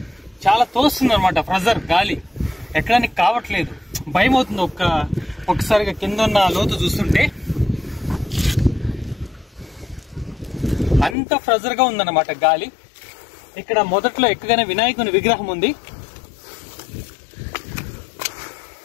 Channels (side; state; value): right; drops out; at 11.2 s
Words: చాలా తోస్తుంది అనమాట, ప్రెజర్ గాలి ఎక్కడానికి కావట్లేదు. భయం అవుతుంది ఒక్కసారిగా కింద ఉన్న లోతు చూస్తుంటే. అంత ప్రెజర్ గా ఉందన్నమాట గాలి. ఇక్కడ మొదట్లో ఎక్కగానే వినాయకుని విగ్రహం ఉంది.